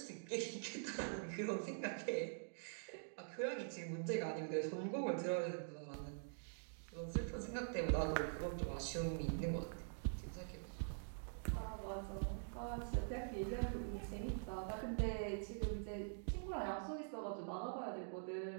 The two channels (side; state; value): left; silent; digital silence